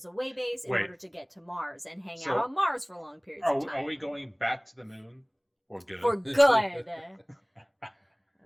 a way base in order to get to Mars and hang out on Mars for long periods of time. Are we going back to the moon? For good. For good.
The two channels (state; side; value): identical; both; correlation 1.00